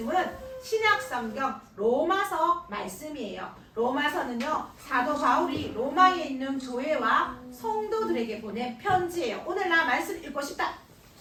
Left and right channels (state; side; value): identical; both; correlation 1.00